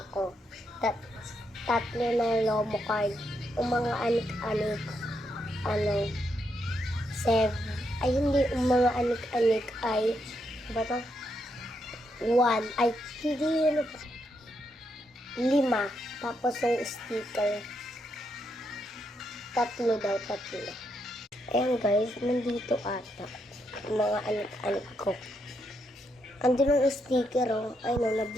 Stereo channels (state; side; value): normal; both; correlation 0.80